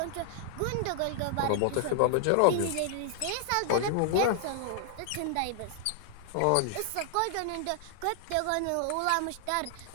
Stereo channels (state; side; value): different; both; correlation -0.01